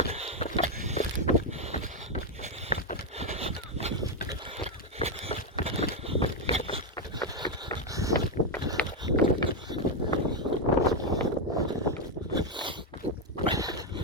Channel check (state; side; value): normal; both; correlation 0.04